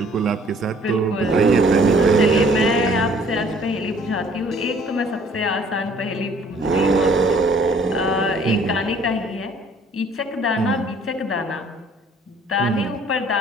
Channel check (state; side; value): normal; both; correlation 0.57